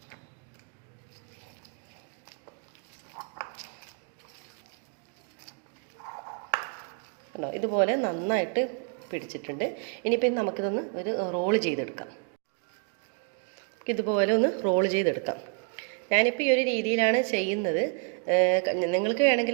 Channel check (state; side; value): quieter; left; 37.2 dB